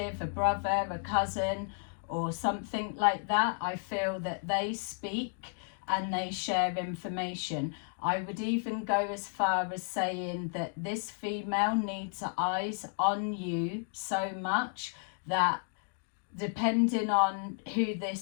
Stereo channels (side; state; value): right; silent; 56 dB below the other